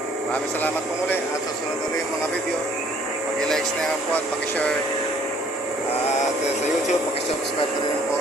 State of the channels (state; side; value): normal; both; correlation 0.60